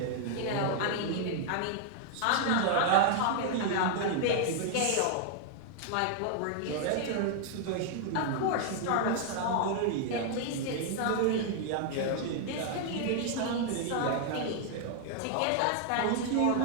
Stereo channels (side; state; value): both; different; correlation 0.00